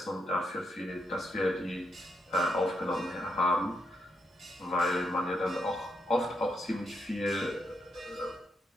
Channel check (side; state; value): both; normal; correlation 0.80